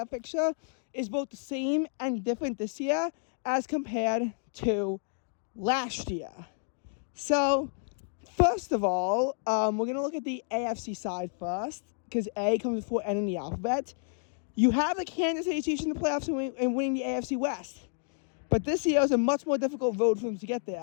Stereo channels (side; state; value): right; silent; 58 dB below the other